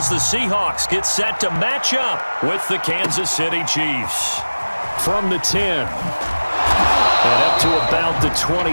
the Seahawks get set to match up with the Kansas City Chiefs. From the 10. And up to about the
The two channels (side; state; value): both; inverted; correlation -1.00